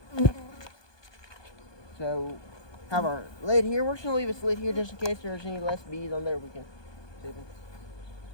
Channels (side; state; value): right; late; 1.2 ms